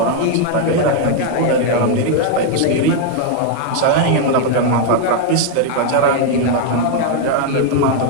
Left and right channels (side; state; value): both; different; correlation 0.00